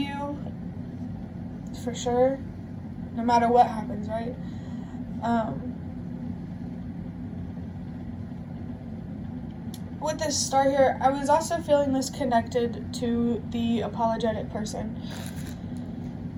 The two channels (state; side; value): identical; both; correlation 1.00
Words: for sure, no matter what happens, right? With this star here, I was also feeling this connected to the apologetic person.